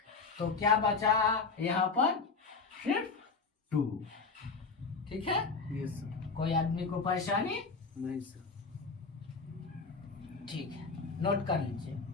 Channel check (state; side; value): quieter; right; 4.5 dB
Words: तो क्या बचा यहाँ पर? सिर्फ 2, ठीक है। Yes sir. कोई आदमी को परेशानी? नहीं सर। ठीक है, नोट कर लीजिए।